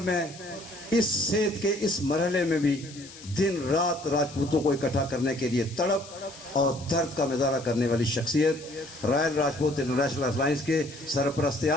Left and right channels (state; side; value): noise; left; hiss, 18 dB below the sound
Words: اس صحت کے اس مرحلے میں بھی دن رات راجپوتوں کو اکٹھا کرنے کے لیے تڑپ اور درد کا مظاہرہ کرنے والی شخصیت, رائل راجپوت انٹرنیشنل الائنس کے سرپرست